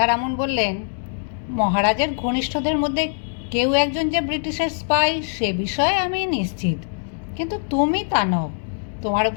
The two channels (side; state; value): right; silent; digital silence